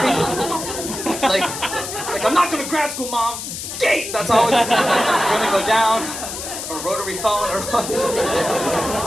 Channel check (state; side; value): noise; left; hiss, 7 dB below the sound